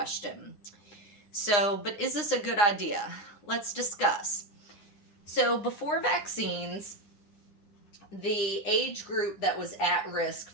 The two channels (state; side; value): late; right; 9.8 ms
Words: So, but is this a good idea? Let's discuss. So, before vaccines, the age group that was at risk